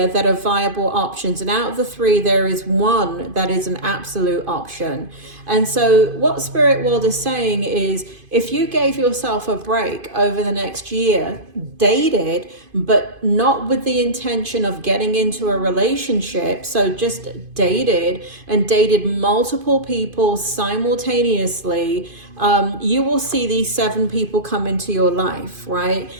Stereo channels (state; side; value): late; left; 2.5 ms